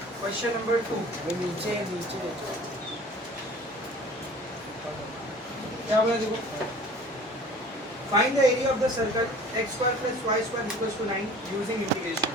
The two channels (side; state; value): both; normal; correlation 0.46